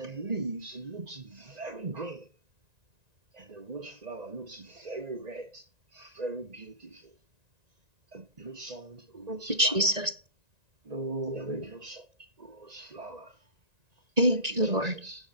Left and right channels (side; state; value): left; late; 1.9 ms